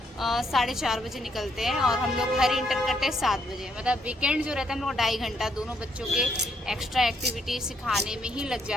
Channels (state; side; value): normal; both; correlation 0.73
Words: 4:30 बजे निकलते हैं, और हम लोग घर इंटर करते हैं 7 बजे। मतलब वीकेंड जो रहता है हम लोग 2.5 घंटा दोनों बच्चों के एक्स्ट्रा एक्टिविटी सिखाने में ही लग